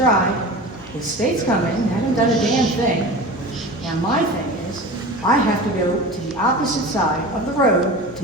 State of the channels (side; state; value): both; normal; correlation 0.33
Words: The state's coming, haven't done a damn thing. And my thing is, I have to go to the opposite side of the road